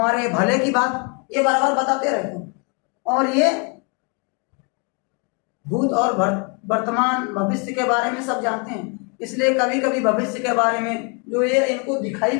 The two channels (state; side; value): quieter; right; 34.4 dB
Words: भले की बात ये बराबर बताते रहते हैं। और ये भूत और वर्तमान भविष्य के बारे में सब जानते हैं, इसलिए कभी कभी भविष्य के बारे में जो ये इनको दिखाई